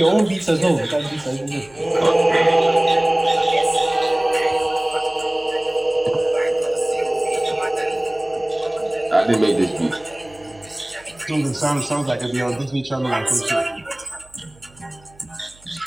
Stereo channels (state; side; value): noise; right; hum, 27 dB below the sound